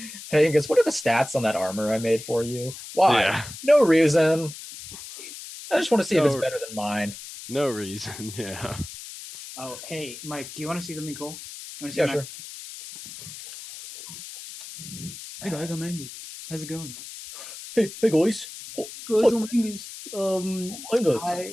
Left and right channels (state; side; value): noise; left; hiss, 13 dB below the sound